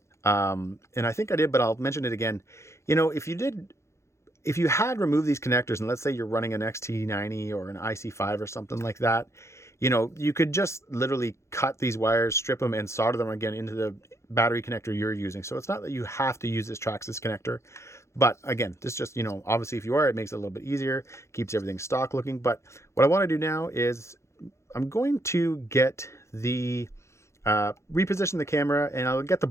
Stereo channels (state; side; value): late; right; 0.14 ms